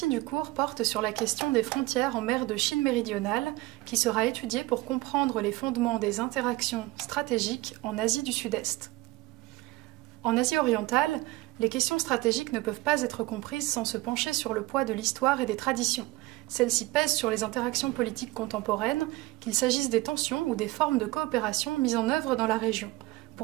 du cours porte sur la question des frontières en mer de Chine méridionale qui sera étudiée pour comprendre les fondements des interactions stratégiques en Asie du Sud-Est. En Asie orientale, les questions stratégiques ne peuvent pas être comprises sans se pencher sur le poids de l'histoire et des traditions. Celles-ci pèsent sur les interactions politiques contemporaines, qu'il s'agisse des tensions ou des formes de coopération mises en œuvre dans la région.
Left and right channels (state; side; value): quieter; left; 20.0 dB